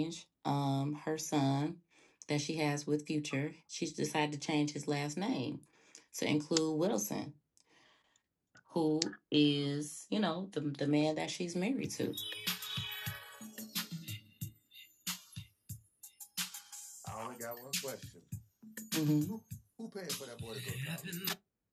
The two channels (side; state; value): both; identical; correlation 1.00